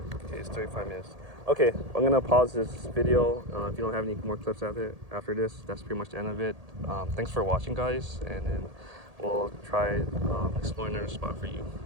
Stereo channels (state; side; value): late; left; 1.8 ms